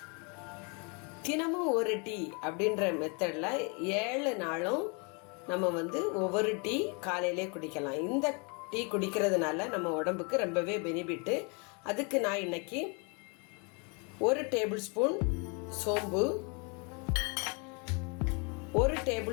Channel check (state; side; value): quieter; right; 33.7 dB